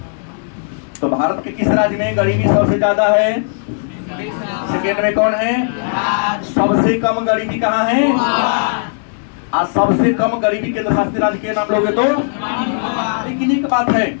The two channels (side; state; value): right; silent; 68 dB below the other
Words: तो भारत के किस राज्य में गरीबी सबसे ज्यादा है? सेकेंड में कौन है? सबसे कम गरीबी कहां है? आज सबसे कम गरीबी केंद्र शासित राज्य के नाम लोगे तो। लेकिन एक बात है